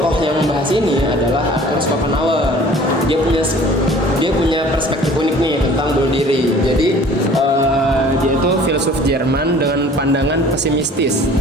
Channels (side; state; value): both; normal; correlation 0.49